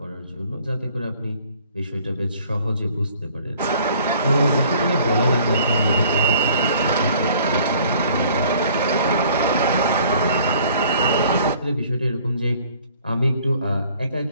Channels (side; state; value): both; inverted; correlation -0.56